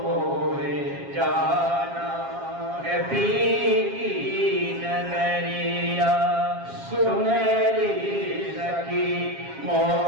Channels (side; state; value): left; late; 7.4 ms